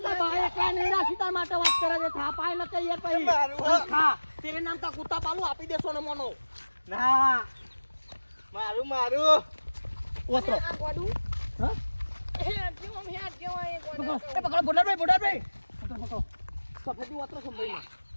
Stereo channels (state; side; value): inverted; both; correlation -1.00